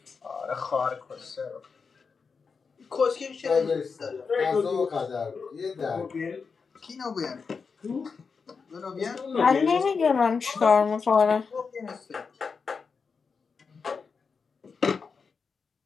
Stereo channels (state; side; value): quieter; right; 5.3 dB